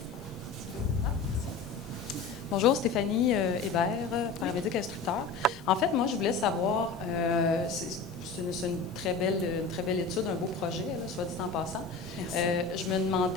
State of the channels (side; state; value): right; quieter; 4.5 dB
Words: Bonjour, Stéphanie Hébert, paramédic instructeur. En fait, moi, je voulais savoir, c'est une très belle étude, un beau projet, là, soit dit en passant. Je me